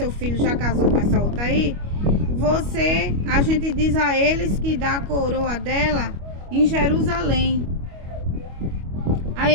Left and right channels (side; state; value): left; late; 25 ms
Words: filho já casou com essa outra aí, a gente diz a eles que dá a coroa dela em Jerusalém. Aí